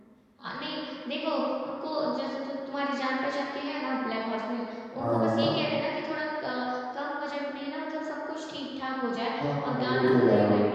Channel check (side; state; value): both; identical; correlation 1.00